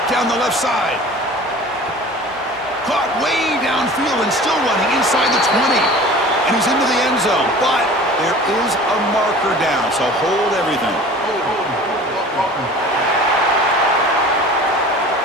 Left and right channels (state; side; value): normal; both; correlation 0.42